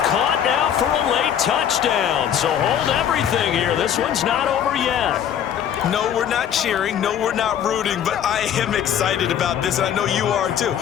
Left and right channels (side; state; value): right; quieter; 9.4 dB